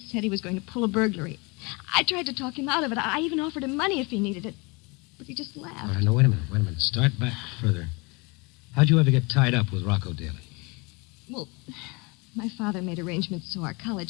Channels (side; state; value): right; quieter; 28.1 dB